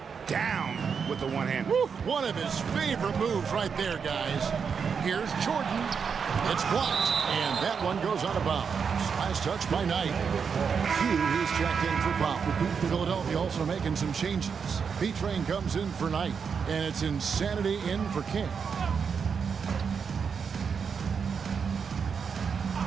down with the one hand. One of his favorite moves right there, guys. Here's Jordan. It's blocked, and that one goes out of bounds. Last touch by Knight. He's checked in for Powell. Philadelphia also making some changes. B-Train comes in for Knight, and it's Insanity in for King.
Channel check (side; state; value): left; quieter; 6.3 dB